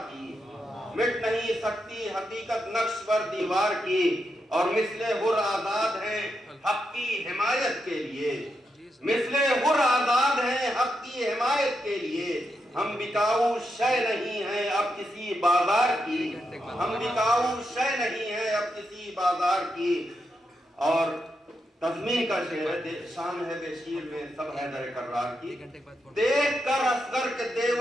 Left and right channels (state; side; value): normal; both; correlation 0.84